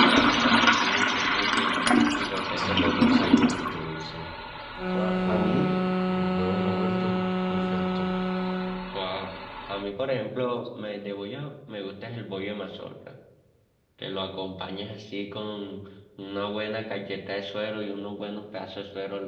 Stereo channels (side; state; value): both; identical; correlation 1.00